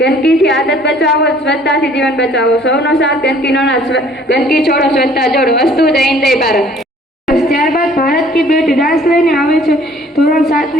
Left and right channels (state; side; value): normal; both; correlation 0.56